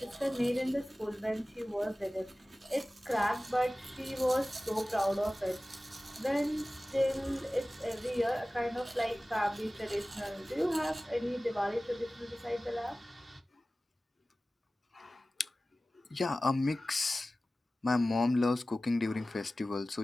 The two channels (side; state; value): both; normal; correlation 0.97